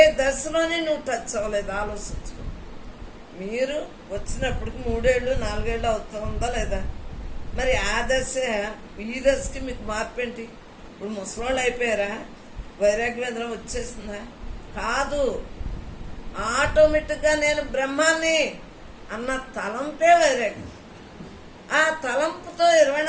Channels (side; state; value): both; identical; correlation 1.00